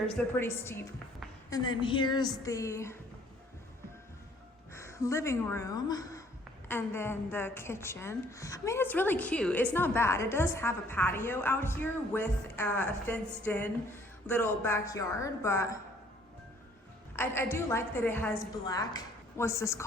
They're pretty steep. And then here's the living room. And then the kitchen. I mean, it's really cute. It's not bad. It does have a patio out here with a fenced in little backyard, but I do like that it has black, what's this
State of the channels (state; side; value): normal; both; correlation 0.60